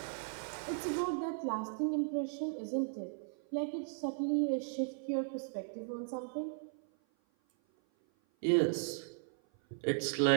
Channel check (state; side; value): silent; left; 53 dB below the other